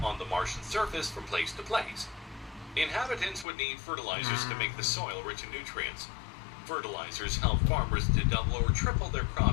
on the Martian surface from place to place. Inhabitants would need fertilizers to make the soil rich in nutrients. Fertilizers help farmers to double or triple their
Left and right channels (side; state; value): right; drops out; at 3.5 s